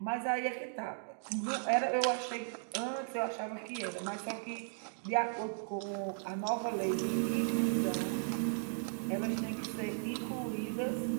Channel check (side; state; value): left; silent; digital silence